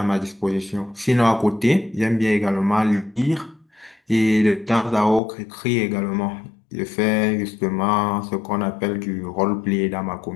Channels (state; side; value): drops out; right; at 5.2 s